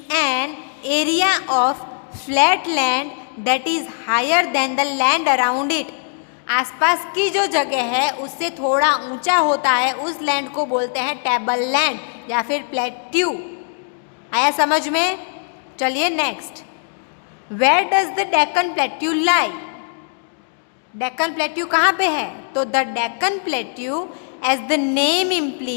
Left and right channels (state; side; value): silent; right; digital silence